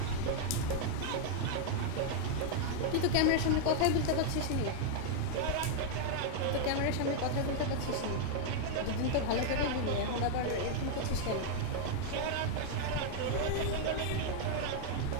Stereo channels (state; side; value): different; both; correlation 0.00